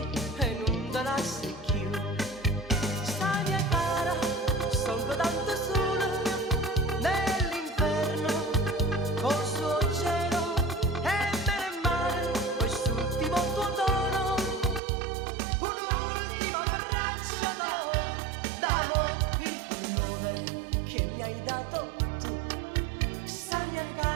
e non te la secchio. Sta mia cara, sono tanto sola nell'inferno, col suo cielo e bene e male, quest'ultimo tuo tono, un'ultima braccia d'amore, il pullover che mi hai dato tu, sta mia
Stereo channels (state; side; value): drops out; left; at 14.8 s